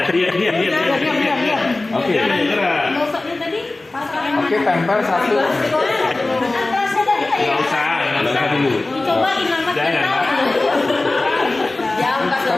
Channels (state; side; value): quieter; right; 3.0 dB